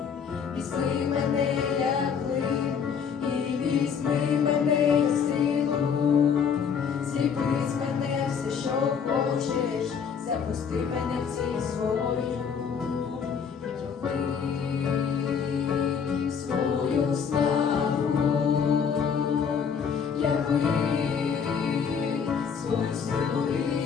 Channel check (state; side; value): quieter; right; 6.8 dB